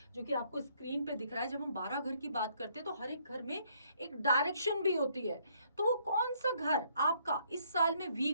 जो कि आपको स्क्रीन पे दिख रहा है, जब हम 12 घर की बात करते हैं तो हर एक घर में एक डायरेक्शन भी होती है। तो वो कौन सा घर आपका इस साल में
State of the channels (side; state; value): both; inverted; correlation -0.68